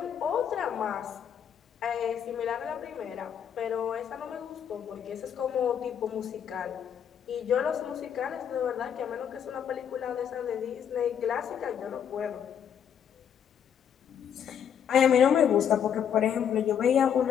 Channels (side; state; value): right; quieter; 8.5 dB